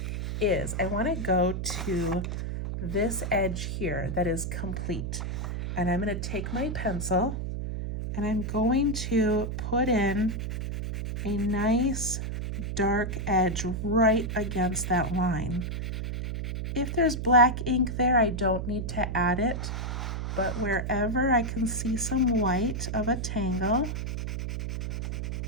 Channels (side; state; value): right; noise; hum, 3 dB below the sound